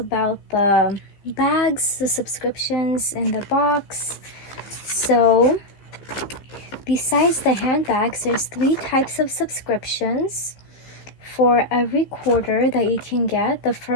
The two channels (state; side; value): late; right; 15 ms